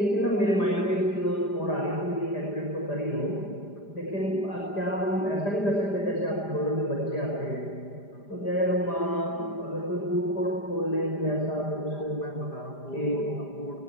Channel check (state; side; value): late; right; 5.0 ms